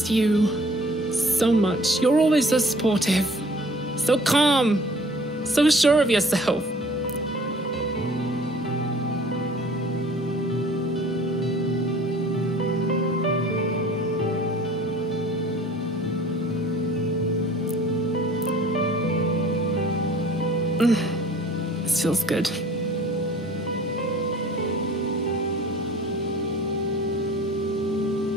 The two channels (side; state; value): both; normal; correlation 0.50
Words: you so much. You're always so supportive, so calm, so sure of yourself. This feels good.